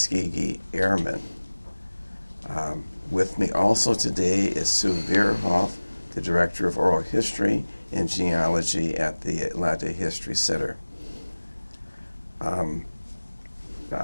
Airmen. With me also today is Sue Veerhoff, the Director of Oral History and Genealogy at the Atlanta History Center.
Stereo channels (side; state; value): both; inverted; correlation -1.00